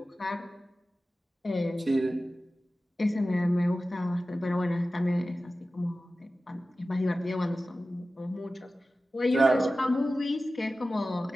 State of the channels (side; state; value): both; normal; correlation 0.95